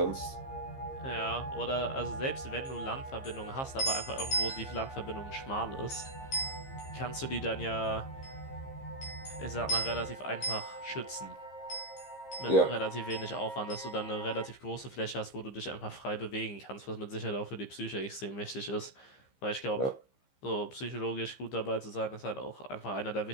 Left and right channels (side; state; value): right; late; 15 ms